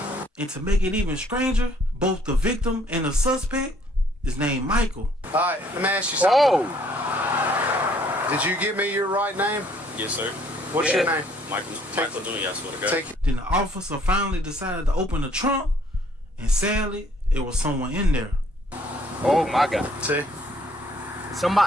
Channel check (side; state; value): both; normal; correlation 0.63